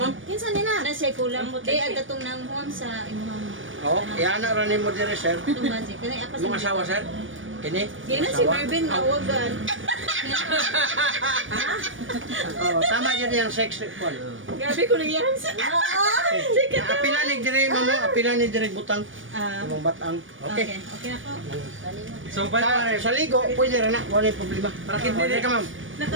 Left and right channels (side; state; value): left; late; 0.57 ms